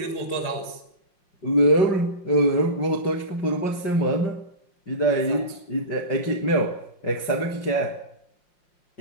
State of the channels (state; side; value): late; right; 5.6 ms